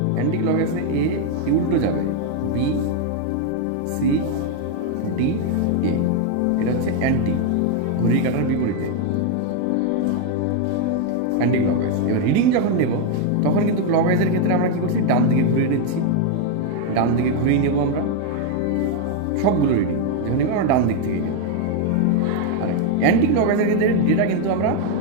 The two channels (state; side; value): different; both; correlation 0.01